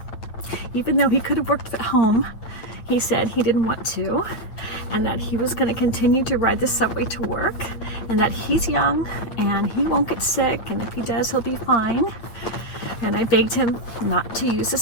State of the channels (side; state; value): right; late; 9.2 ms